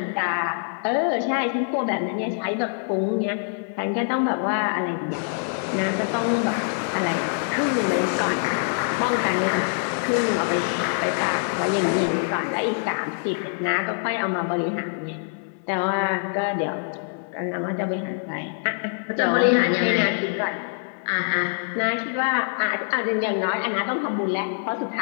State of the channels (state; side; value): silent; right; 62 dB below the other